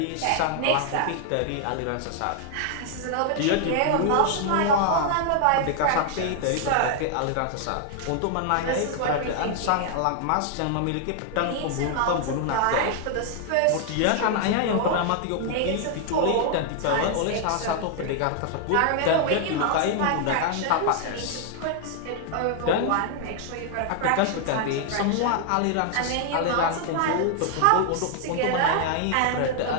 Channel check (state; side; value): different; both; correlation 0.00